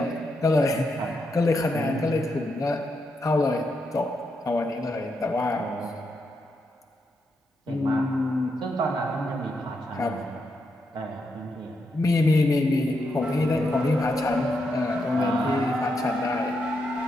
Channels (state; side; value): normal; both; correlation 0.82